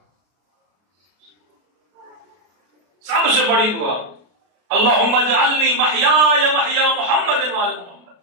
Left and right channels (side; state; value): left; late; 33 ms